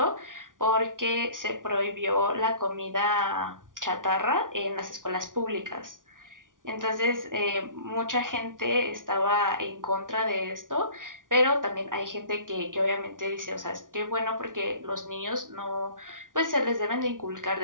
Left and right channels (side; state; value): left; late; 0.88 ms